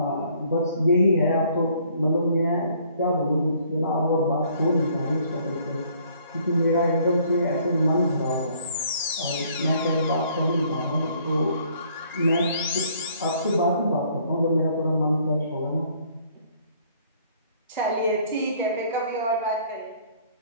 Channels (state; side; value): inverted; both; correlation -0.61